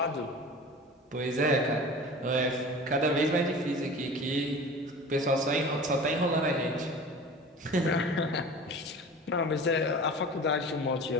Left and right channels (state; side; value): normal; both; correlation 0.38